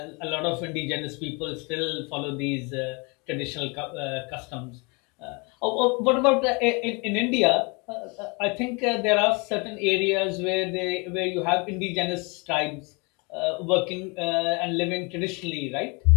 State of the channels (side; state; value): right; quieter; 29.9 dB